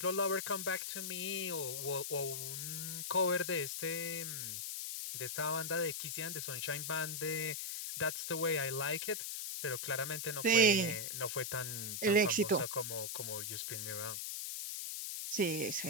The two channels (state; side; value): noise; left; hiss, 4 dB below the sound